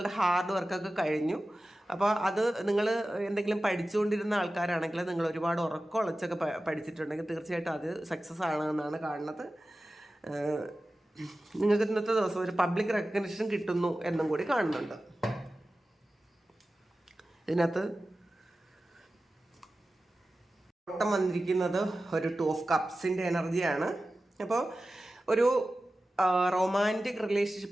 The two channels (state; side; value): normal; both; correlation 0.95